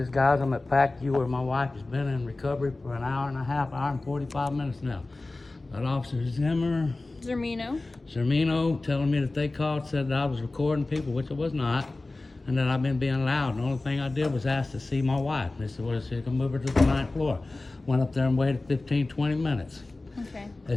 guys. I'm at P.A.C.U where my wife has been in recovery for an hour and a half, hour and 45 minutes now. That Officer Zermeno telling me that they called, said that I was recording people, which I was not, and that I've been being loud. The only thing I did was ask to see my wife. They said, well, she can move her to the 9th floor. Went up there and waited 15, 20 minutes. Okay.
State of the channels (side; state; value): right; quieter; 3.1 dB